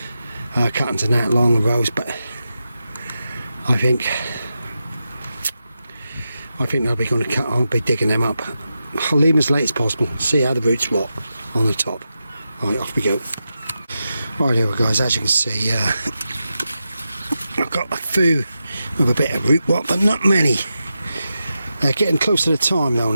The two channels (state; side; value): inverted; both; correlation -0.89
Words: cuttings in that long rows, but I think I'll be digging them up. I'll leave them as late as possible, see how the roots rot on the top. Right, off we go. Right here guys, as you can see, I've got a few with a bit of root rot, but not many. They're getting close to the time though